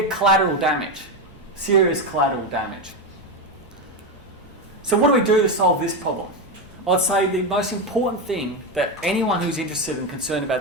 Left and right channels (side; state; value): both; normal; correlation 0.12